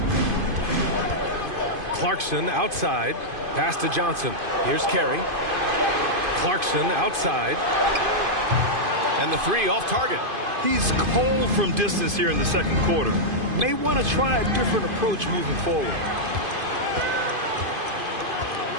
Clarkson outside. Pass to Johnson. Here's Carey. Clarkson outside. And the 3 off target. He's cold from distance here in the second quarter. May want to try a different approach moving forward.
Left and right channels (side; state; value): left; late; 2.5 ms